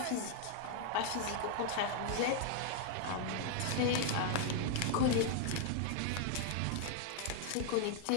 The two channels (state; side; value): different; both; correlation 0.00